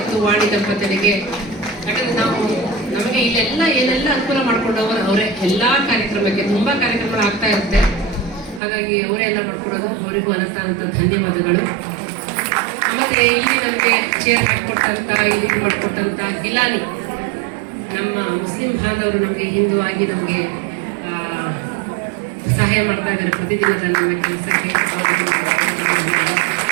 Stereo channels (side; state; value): left; drops out; at 8.6 s